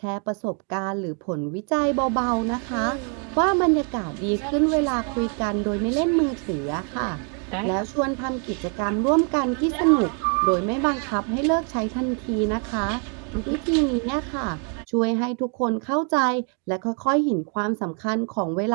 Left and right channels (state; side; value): quieter; left; 39.5 dB